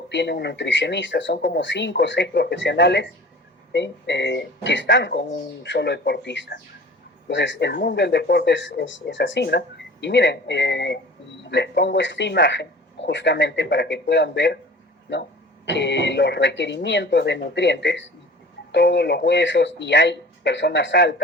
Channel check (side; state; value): both; normal; correlation 0.42